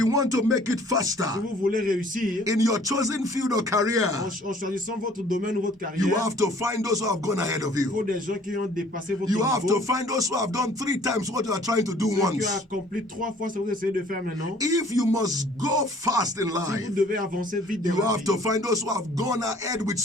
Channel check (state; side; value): normal; both; correlation 0.55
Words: want to make it Si faster vous voulez réussir, in your chosen field of career, en choisissant votre domaine ou votre you carrière, have to find those who have gone ahead of il faut you. des gens qui ont dépassé votre You have niveau, to find those who have done 3 times what you are trying to do ceux qui once. ont accompli 3 fois ce que vous essayez de faire maintenant. If you must go fast in Si vous life, devez avancer vite dans you la have vie, to find those who have gone ahead with vous